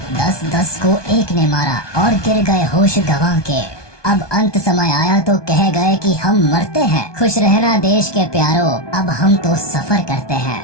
10-10 को एक ने मारा और गिर गए होश गंवा के। अब अंत समय आया तो कह गए कि हम मरते हैं, खुश रहना देश के प्यारों, अब हम तो सफर करते हैं।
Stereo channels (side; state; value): right; late; 1.2 ms